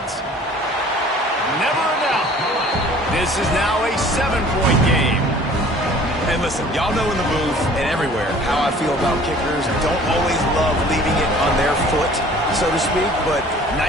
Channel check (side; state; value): both; normal; correlation 0.50